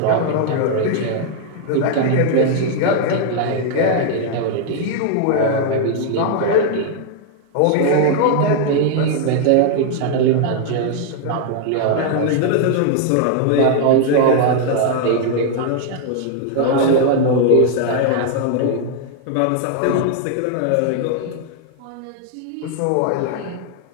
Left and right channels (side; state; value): both; different; correlation 0.00